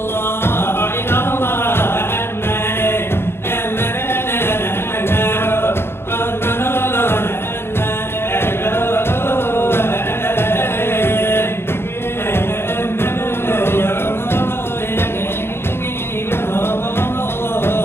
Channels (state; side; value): late; right; 0.11 ms